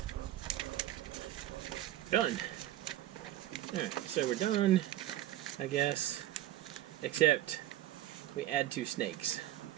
done. Alright, so we're done, I guess. Except we add 2 snakes.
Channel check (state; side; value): quieter; left; 13.8 dB